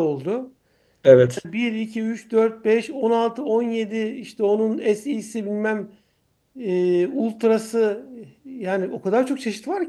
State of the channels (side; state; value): both; identical; correlation 1.00